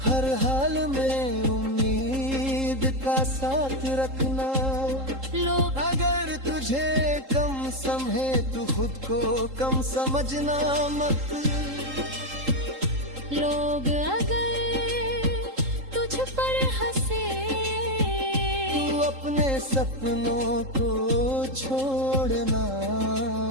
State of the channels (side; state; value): left; late; 3.7 ms